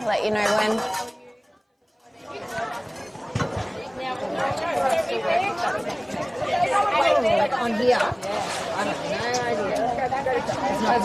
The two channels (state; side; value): identical; both; correlation 1.00